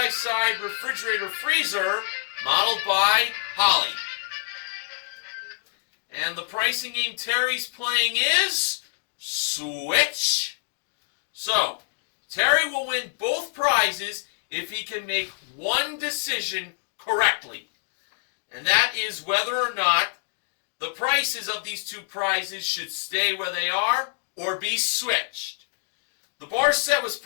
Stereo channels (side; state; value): right; silent; digital silence